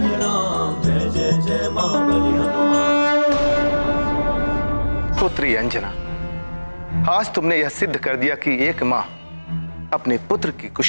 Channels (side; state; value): both; inverted; correlation -1.00